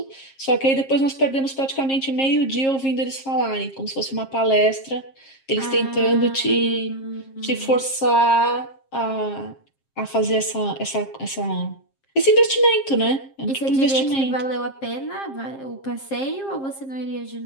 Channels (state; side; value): late; right; 7.5 ms